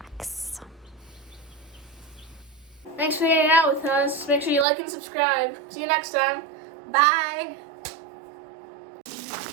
Thanks for hanging out with us. Make sure you like and subscribe. See you next time. Bye.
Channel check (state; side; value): drops out; left; at 4.7 s